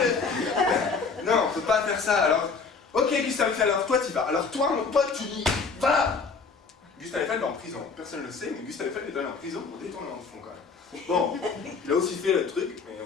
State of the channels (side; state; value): right; quieter; 4.8 dB